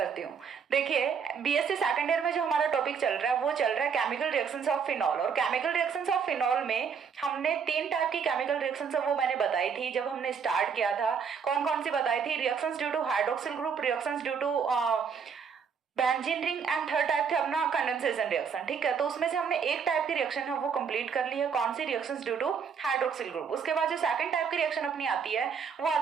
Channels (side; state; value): left; quieter; 6.5 dB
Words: हूँ। देखिए, बीएससी सेकंड ईयर में जो हमारा टॉपिक चल रहा है वो चल रहा है केमिकल रिएक्शंस ऑफ फिनॉल। और केमिकल रिएक्शंस ऑफ फिनॉल में हमने 3 टाइप की केमिकल रिएक्शंस है वो मैंने बताई थी जब हमने स्टार्ट किया था। कौन कौन सी बताई थी? Reactions due to hydroxyl group, reactions due to benzene ring, and third type थे अपना कंडेंसेशन रिएक्शन। ठीक है, तो उसमें से हमने एक टाइप की रिएक्शन है वो कंप्लीट कर ली है। कौन सी? Reactions due to hydroxyl group. उसके बाद जो सेकंड टाइप की रिएक्शन अपनी आती है वो